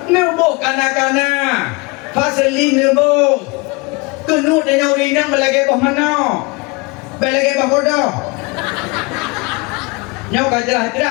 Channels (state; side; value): quieter; right; 27.3 dB